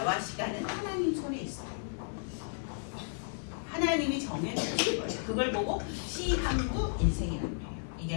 시간은 하나님 손에 있어요. 하나님이 정해주신 거예요. 그걸 보고 시한부 인생이라고 해요.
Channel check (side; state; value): right; silent; 55 dB below the other